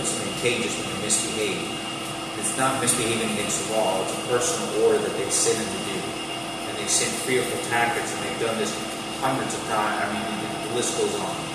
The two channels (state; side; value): identical; both; correlation 1.00